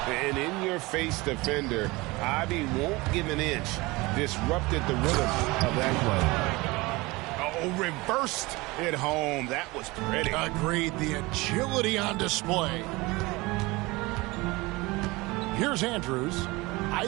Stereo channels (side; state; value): left; quieter; 22.7 dB